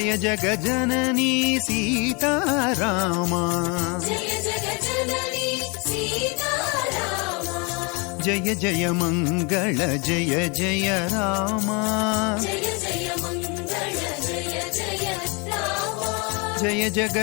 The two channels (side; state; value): right; quieter; 30.9 dB